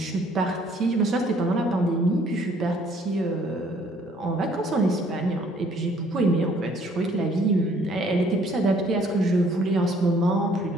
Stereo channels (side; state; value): both; normal; correlation 0.61